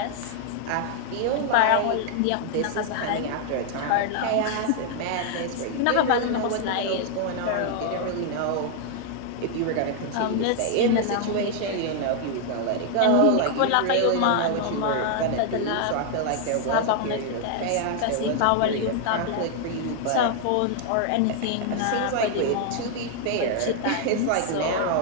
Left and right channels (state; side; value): different; both; correlation 0.00